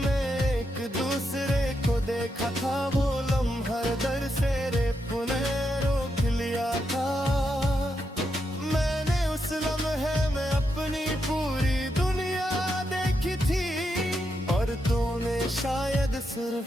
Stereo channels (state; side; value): normal; both; correlation 0.83